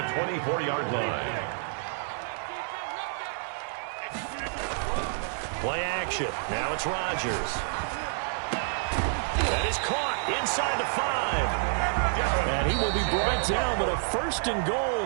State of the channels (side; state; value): left; silent; 59 dB below the other